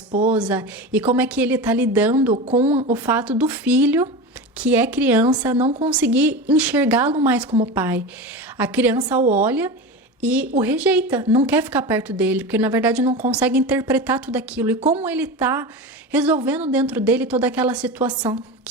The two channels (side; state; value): both; normal; correlation 0.25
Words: e como é que ele tá lidando com o fato do filho, que é criança, não conseguir enxergá-lo mais como pai. A criança o olha e o rejeita, não quer ficar perto dele, porque na verdade não consegue interpretar tudo aquilo. E como ele tá resolvendo dentro dele toda aquela situação,